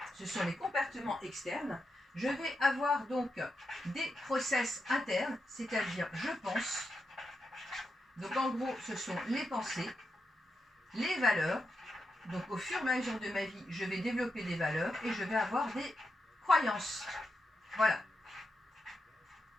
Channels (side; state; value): both; normal; correlation 0.87